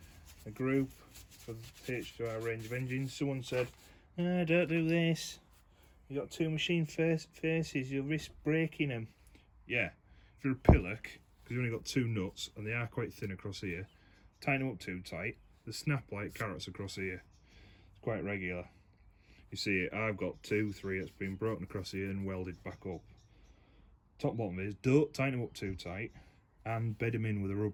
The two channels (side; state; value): both; identical; correlation 1.00